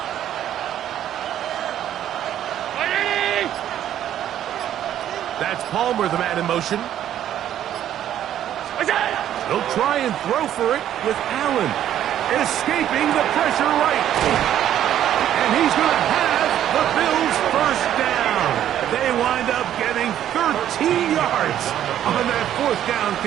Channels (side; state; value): left; quieter; 11.1 dB